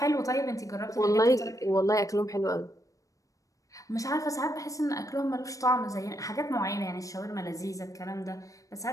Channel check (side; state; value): right; late; 0.16 ms